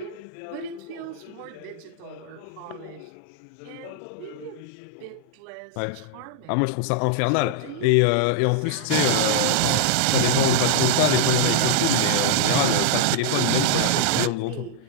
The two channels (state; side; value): different; both; correlation -0.01